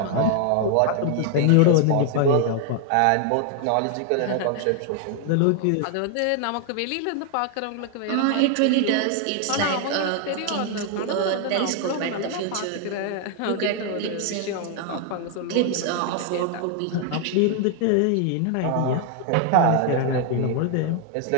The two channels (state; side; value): different; both; correlation 0.00